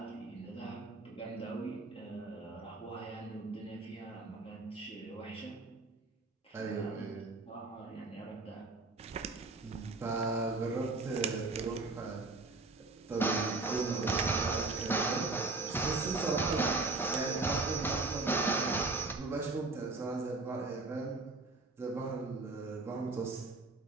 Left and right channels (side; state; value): left; quieter; 3.4 dB